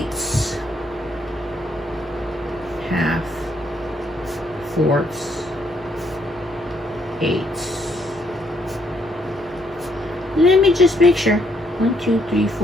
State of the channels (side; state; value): both; normal; correlation 0.72